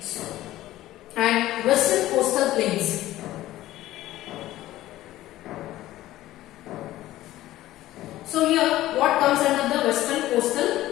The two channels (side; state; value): right; quieter; 15.3 dB